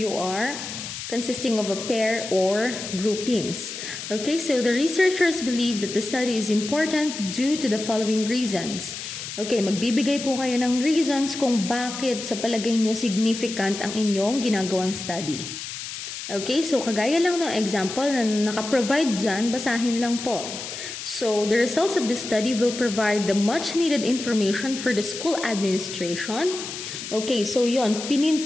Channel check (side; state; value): left; noise; hiss, 8 dB below the sound